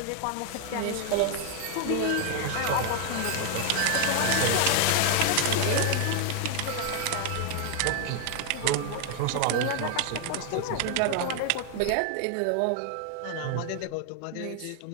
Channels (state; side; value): different; both; correlation 0.00